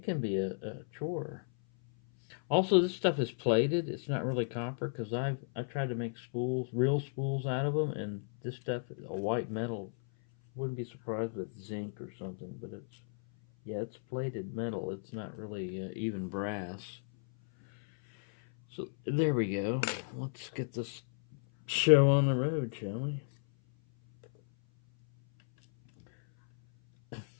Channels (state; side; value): silent; right; 55 dB below the other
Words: can be a chore. Also, this stuff is plated. It's not really copper because I've tried to make spools, real spools out of them, and this stuff is a white metal. Wouldn't be surprised with zinc or something, but it's plated metal. It's not really even brass. So there we go. Let's get this show on the road, shall we?